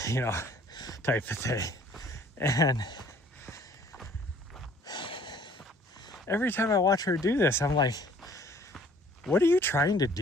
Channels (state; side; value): normal; both; correlation 0.56